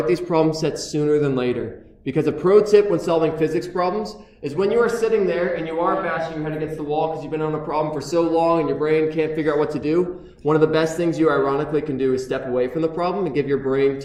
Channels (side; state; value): both; identical; correlation 1.00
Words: these problem sets sooner than later. Because a pro tip when solving physics problems is when you are sitting there and you are bashing your head against the wall because you've been on a problem for so long and your brain can't figure out what to do, one of the best things you ironically can do is step away from the problem and give your brain